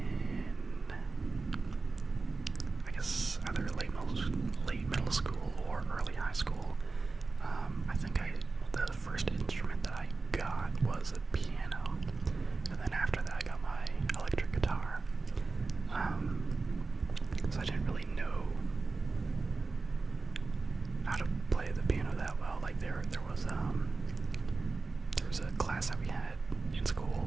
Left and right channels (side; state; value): left; quieter; 3.9 dB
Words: I guess, either late middle school or early high school, I think the first instrument that I got was a piano, and then after that I got my electric guitar. So I didn't really know how to play the piano that well. Like there was a class that we had in